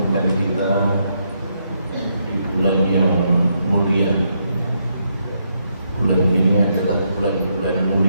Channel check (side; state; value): both; inverted; correlation -0.78